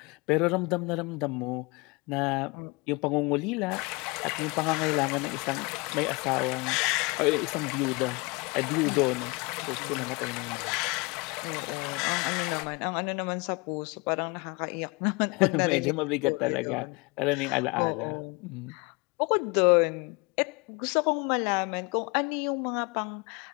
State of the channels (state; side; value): quieter; right; 27.6 dB